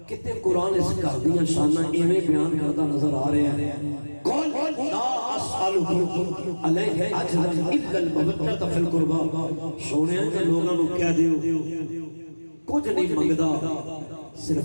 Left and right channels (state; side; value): inverted; both; correlation -1.00